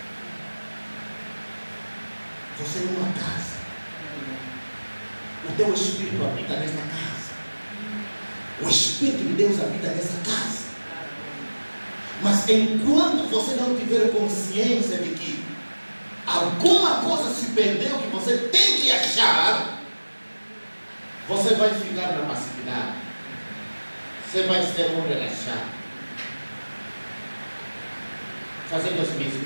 Você é uma casa. O teu Espírito habita nesta casa. O Espírito de Deus habita nessa casa. Mas enquanto você não tiver consciência de que alguma coisa se perdeu que você tem que achar, você vai ficar na passividade. Você vai ser um relaxado, fazendo as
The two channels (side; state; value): both; inverted; correlation -1.00